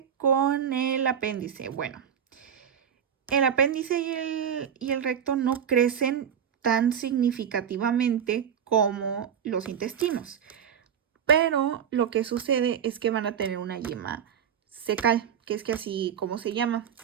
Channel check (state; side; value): quieter; left; 8.3 dB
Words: con el apéndice? Bueno, el apéndice y el recto no crecen tan significativamente como los intestinos, pero lo que sucede es que van a tener una yema cecal, que es que así como se llama,